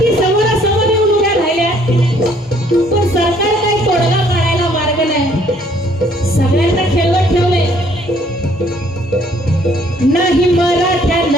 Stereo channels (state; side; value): normal; both; correlation 0.62